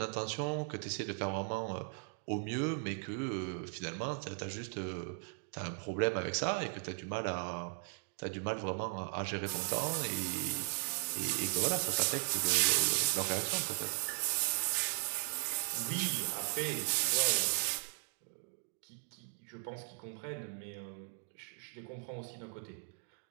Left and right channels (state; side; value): silent; left; 53 dB below the other